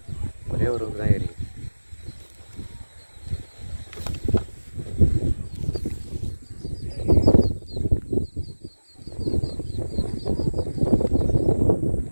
ஒரே ஒரு தான் ஏறி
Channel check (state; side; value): inverted; both; correlation -1.00